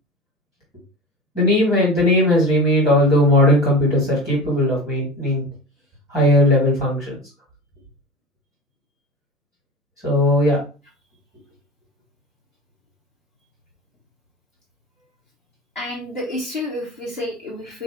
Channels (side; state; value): both; normal; correlation 0.31